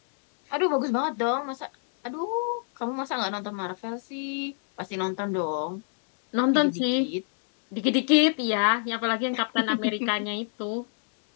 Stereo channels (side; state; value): right; silent; 59 dB below the other